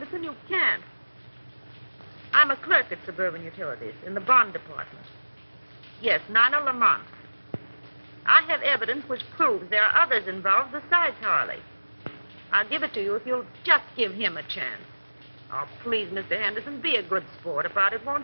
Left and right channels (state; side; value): inverted; both; correlation -1.00